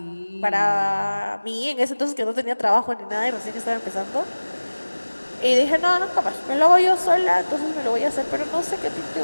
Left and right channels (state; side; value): inverted; both; correlation -1.00